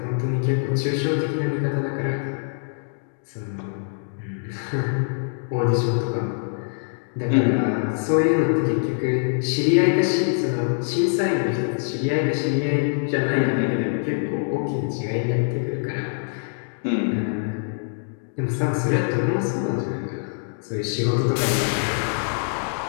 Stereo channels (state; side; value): silent; right; digital silence